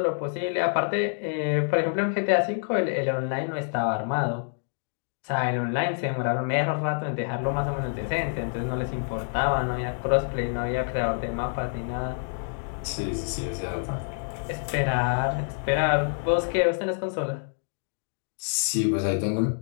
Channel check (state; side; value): silent; right; digital silence